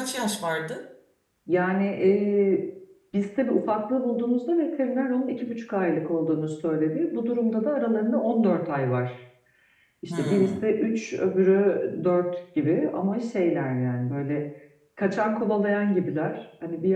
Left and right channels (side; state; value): both; identical; correlation 1.00